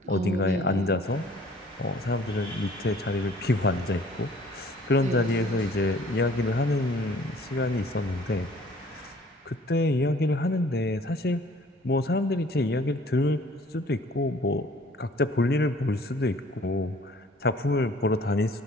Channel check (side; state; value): both; normal; correlation 0.54